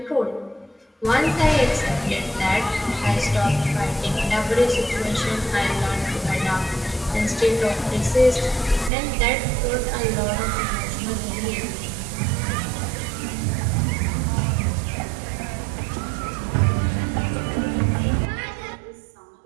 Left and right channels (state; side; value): drops out; left; at 8.9 s